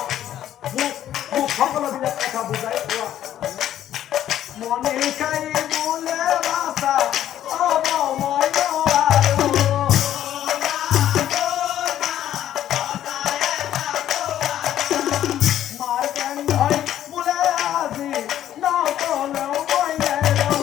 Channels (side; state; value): right; quieter; 11.6 dB